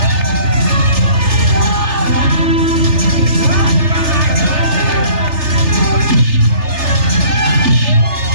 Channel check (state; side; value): late; left; 3.3 ms